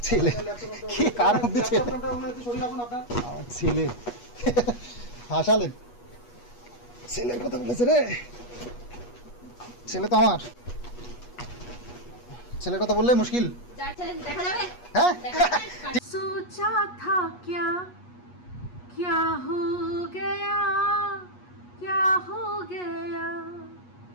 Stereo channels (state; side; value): late; right; 8.3 ms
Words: ছেলে কি কার মধ্যে ছেলে হাসালেন ছেলের কথা বলেছে রে ছেলে তো আমার ছেলের কথা বললে মুশকিল হ্যাঁ सोचा था क्या क्या हो गया